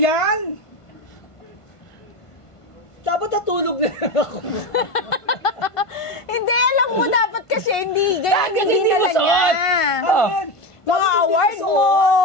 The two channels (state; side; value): late; right; 1.5 ms